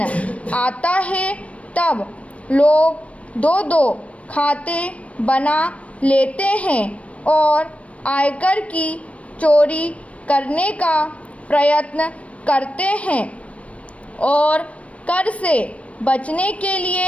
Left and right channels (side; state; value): right; late; 0.064 ms